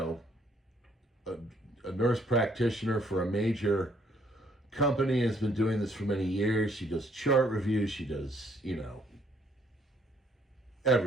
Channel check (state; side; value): normal; both; correlation 0.66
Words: a nurse practitioner for a major company, has been doing this for many years. She does chart reviews. She does,